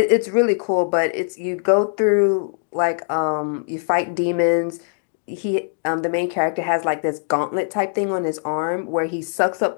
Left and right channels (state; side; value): silent; right; digital silence